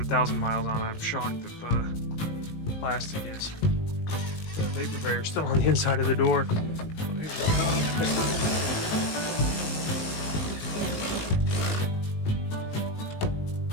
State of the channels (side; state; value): right; late; 19 ms